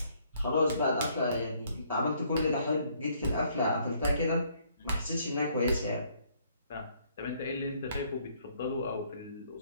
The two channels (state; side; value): inverted; both; correlation -0.66